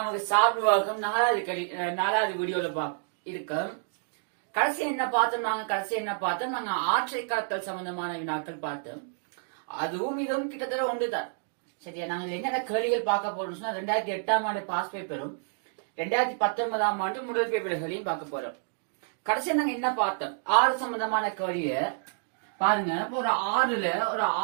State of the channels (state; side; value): silent; left; digital silence